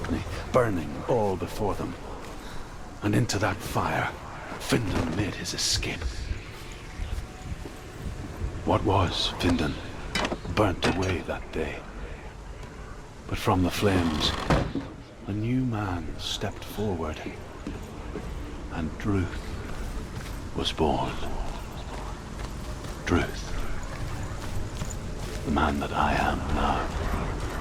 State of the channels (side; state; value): both; identical; correlation 1.00